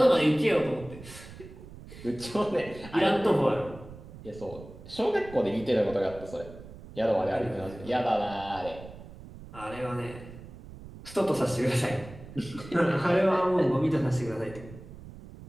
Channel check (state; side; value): noise; right; rumble, 16 dB below the sound